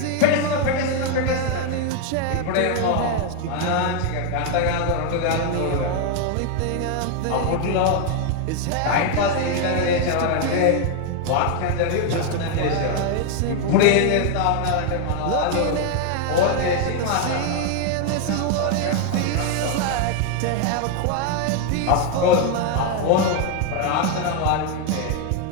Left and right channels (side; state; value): both; different; correlation 0.01